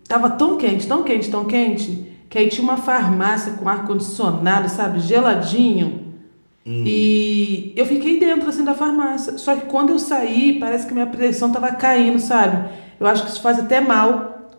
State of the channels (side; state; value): both; inverted; correlation -1.00